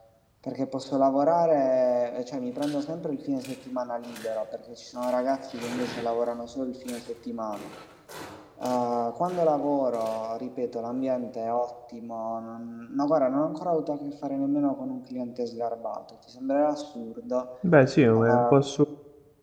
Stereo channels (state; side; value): identical; both; correlation 1.00